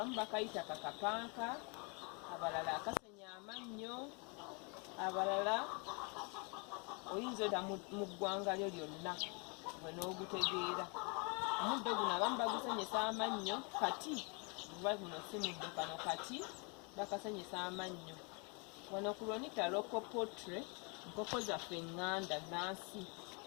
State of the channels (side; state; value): right; quieter; 33.6 dB